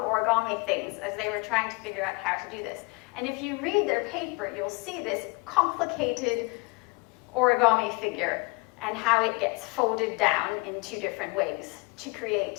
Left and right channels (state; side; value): quieter; right; 28.4 dB